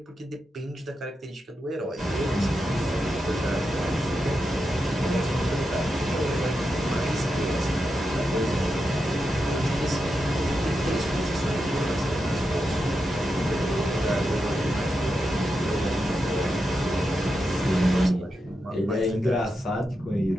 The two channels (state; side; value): normal; both; correlation 0.87